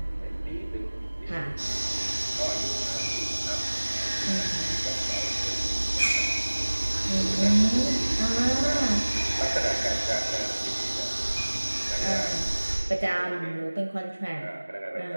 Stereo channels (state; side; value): inverted; both; correlation -1.00